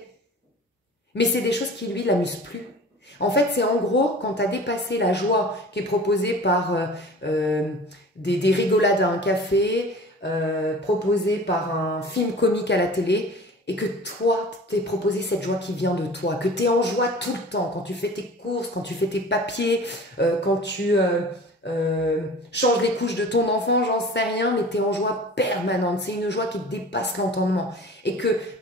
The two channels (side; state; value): both; normal; correlation 0.41